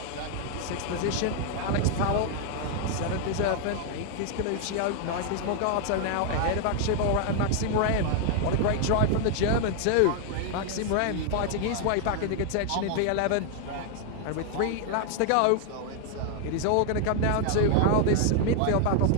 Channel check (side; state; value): both; different; correlation 0.00